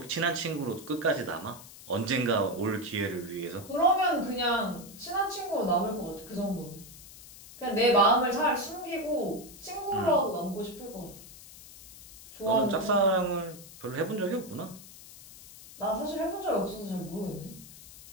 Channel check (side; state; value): left; noise; hiss, 17 dB below the sound